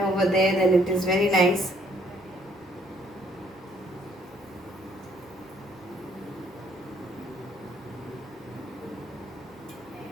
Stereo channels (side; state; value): both; normal; correlation 0.65